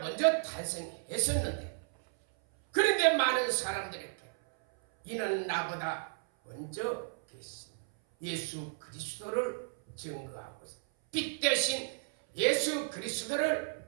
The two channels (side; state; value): left; silent; 55 dB below the other